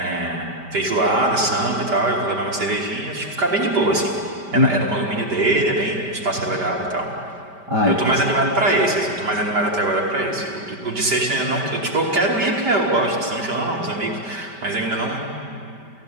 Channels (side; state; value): left; late; 5.1 ms